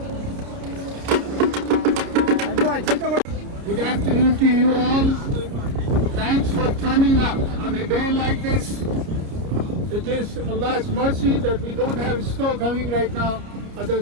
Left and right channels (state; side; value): late; left; 30 ms